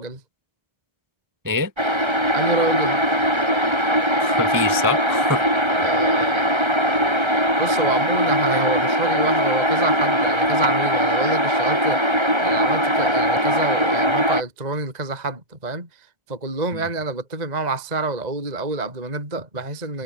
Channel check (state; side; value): late; left; 1.3 ms